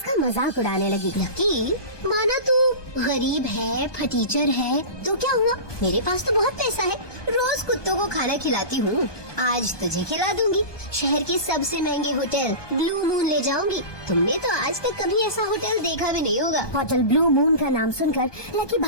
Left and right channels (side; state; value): right; late; 1.2 ms